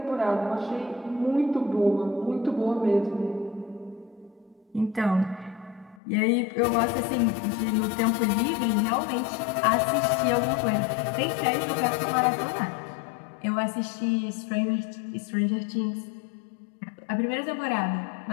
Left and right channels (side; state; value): right; drops out; at 6.0 s